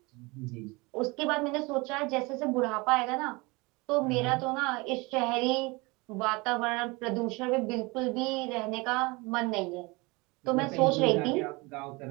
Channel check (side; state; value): left; quieter; 25.4 dB